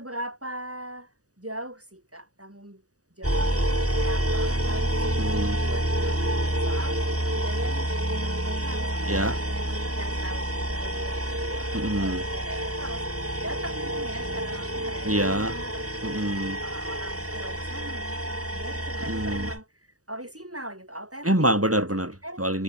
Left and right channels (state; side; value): late; left; 0.66 ms